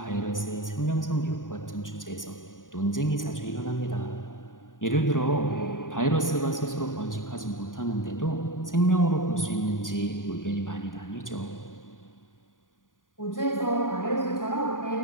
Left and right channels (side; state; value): right; late; 0.89 ms